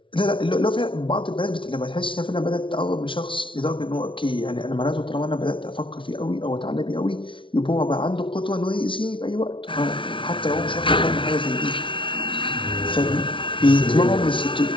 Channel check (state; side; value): late; right; 0.25 ms